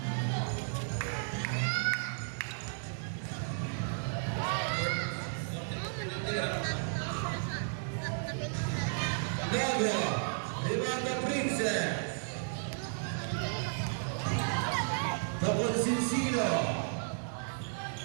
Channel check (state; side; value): silent; left; digital silence